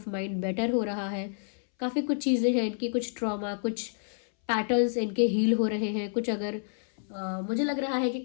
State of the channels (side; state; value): right; silent; 58 dB below the other